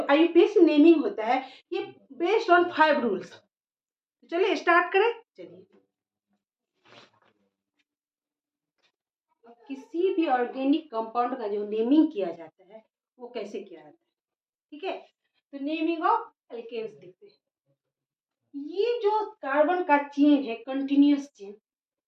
आईयूपीएसी नेमिंग होता है ये बेस्ड ऑन 5 रूल्स। तो चलिए स्टार्ट करें। चलिए, किसी भी ऑर्गेनिक कंपाउंड का जो नेमिंग किया जाता है वो कैसे किया जाता है, ठीक है। तो नेमिंग ऑफ एल्केन्स देखते हैं। ये जो कार्बन का चेन है, कंटिन्यूअस चेन,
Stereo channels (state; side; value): identical; both; correlation 1.00